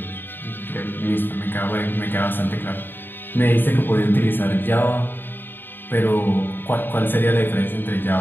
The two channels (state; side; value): late; right; 0.095 ms